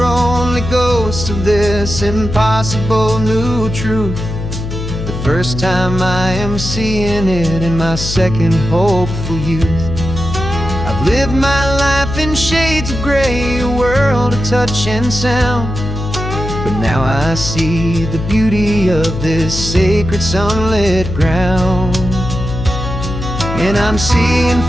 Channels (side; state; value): left; noise; hum, 6 dB below the sound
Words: only ghosts of this impossible new truth. The first time I am seeing it in my second hopeful youth. I've lived my life in shades of gray, a world of touch and sound. But now I see the beauty of this sacred sunlit ground. And I'm seeing